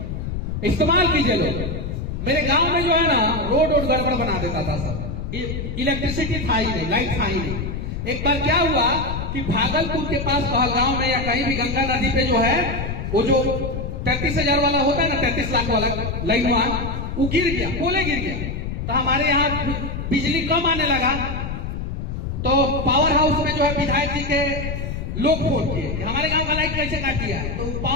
इस्तेमाल कीजिए लोग। मेरे गांव में जो है ना, रोड गड़बड़ बना देता था सब, इलेक्ट्रिसिटी था ही नहीं, लाइट था ही नहीं। एक बार क्या हुआ कि भागलपुर के पास पहलगांव में या कहीं भी गंगा नदी पे जो है, वो जो 33,000 वाला होता है ना, 33 लाख वाला लाइन, वो गिर गया, पोले गिर गया। तो हमारे यहाँ बिजली कम आने लगा, तो पावर हाउस में जो है विधायक जी के लोग फोन किए कि हमारे गांव का लाइट कैसे काट दिया। तो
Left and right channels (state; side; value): noise; left; rumble, 4 dB below the sound